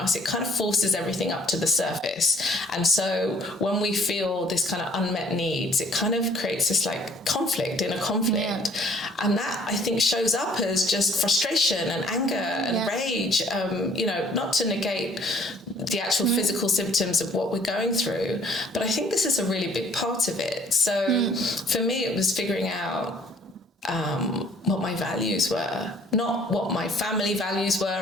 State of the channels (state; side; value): normal; both; correlation 0.58